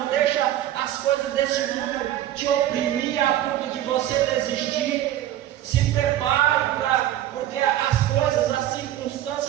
deixa as coisas desse mundo te oprimir a ponto de você desistir. Se prepare, porque as coisas, as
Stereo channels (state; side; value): quieter; left; 12.8 dB